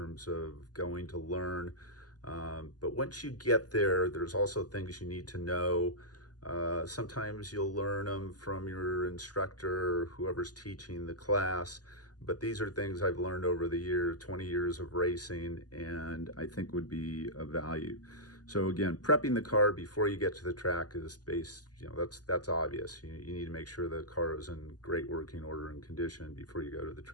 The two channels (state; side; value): late; right; 0.68 ms